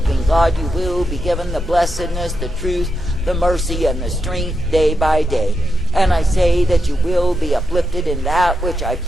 God, you will be given the blessedness, the truth, the mercy, and the strength day by day. And I say that you will be uplifted in that which I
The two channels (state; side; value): normal; both; correlation 0.86